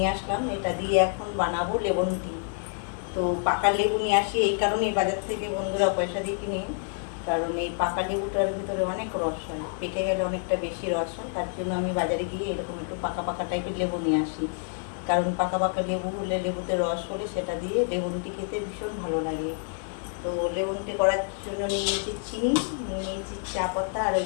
আসলাম। এটা দিয়ে এখন বানাবো লেমন টি। তো পাকা লেবু নিয়ে আসি এই কারণেই বাজার থেকে, বন্ধুরা পয়সা দিয়ে কিনে, কারণ এই পাকা লেবুটার ভেতরে অনেক রস হয়, পেকে গেলে অনেকটা বেশি রস হয়। তার জন্য আমি বাজারে গিয়ে এরকম একটু পাকা পাকা টাইপের লেবু নিয়ে আসি, কারণ পাকা পাকা লেবু হলে, লেবুতে রস হলে সেটা দিয়ে লেমন টি খেতে ভীষণ ভালো লাগে। তো লেমন টি করার জন্য নিয়ে নিয়েছি চিনি, নিয়ে নিয়েছি চা পাতা, আর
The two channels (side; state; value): right; silent; 58 dB below the other